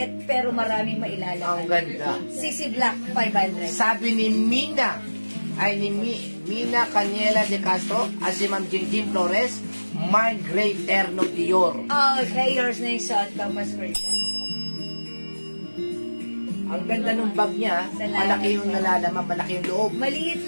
pero maraming mailalaman. Ang ganda. CC Black, 500. Sabi ni Mina, ay ni Mina Caniela de Castro, at si Ma'am Jingjing Flores, Mind Gray Terno Dior. Okay, yours na yung suot ko, mas version. Ang ganda ng bag niya, Salamat malaki yung po. nalalaman, malaki yung loob. Maliit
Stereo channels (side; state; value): both; inverted; correlation -1.00